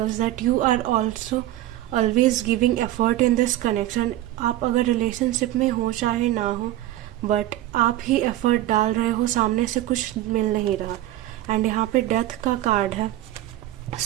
that you are also always giving effort in this connection। आप अगर रिलेशनशिप में हो चाहे ना हो, बट आप ही एफर्ट डाल रहे हो, सामने से कुछ मिल नहीं रहा। एंड यहाँ पे डेथ का कार्ड है।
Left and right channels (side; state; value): left; quieter; 14.7 dB